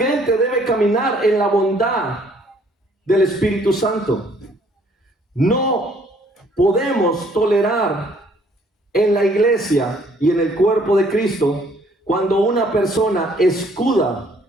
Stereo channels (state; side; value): normal; both; correlation 0.62